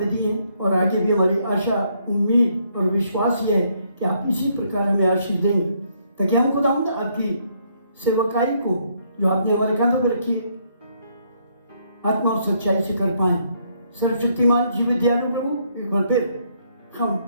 दिए, और आगे भी हमारी आशा, उम्मीद और विश्वास ये है कि आप इसी प्रकार हमें आशीष देंगे, ताकि हम खुदावंद आपकी सेवकाई को जो आपने हमारे कांधों पर रखी है आत्मा और सच्चाई से कर पाए। सर्वशक्तिमान जीवित दयालु प्रभु, एक बार फिर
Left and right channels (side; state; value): both; inverted; correlation -0.71